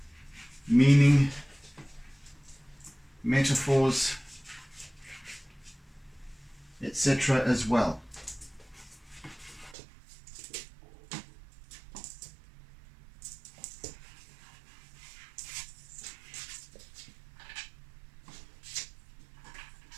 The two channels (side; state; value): left; drops out; at 9.8 s